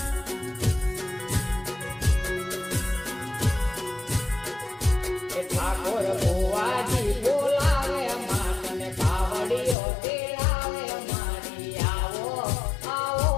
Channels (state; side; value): drops out; right; at 9.8 s